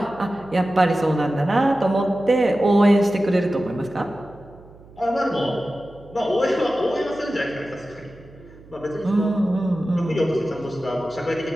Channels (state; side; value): noise; right; hum, 22 dB below the sound